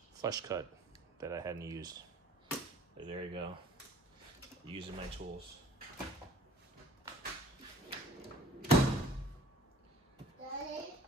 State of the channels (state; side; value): normal; both; correlation 0.52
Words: flush cut that I hadn't used. So there you go, using my tools. Daddy?